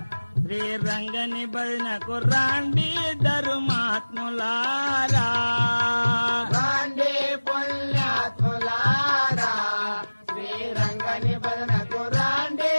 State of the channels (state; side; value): inverted; both; correlation -1.00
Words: శ్రీరంగని భజనకు రాండి ధర్మాత్ములారా. రాండి పుణ్యాత్ములారా శ్రీరంగని భజనకు రాండి